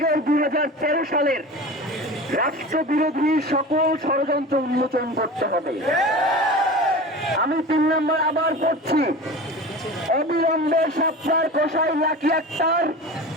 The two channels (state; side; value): normal; both; correlation 0.33